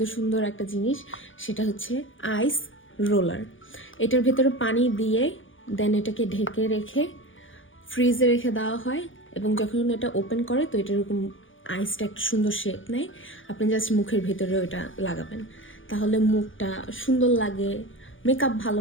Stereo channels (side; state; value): right; late; 0.57 ms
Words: সুন্দর একটা জিনিস, সেটা হচ্ছে আইস রোলার। এটার ভেতরে পানি দিয়ে দেন এটাকে ঢেকে রেখে ফ্রিজে রেখে দেওয়া হয়, এবং যখন এটা ওপেন করে তো এটা এরকম আইসটা একটা সুন্দর শেপ নেয়। আপনি জাস্ট মুখের ভেতরে ওটা লাগাবেন, তাহলে মুখটা সুন্দর লাগে, মেকআপ ভালো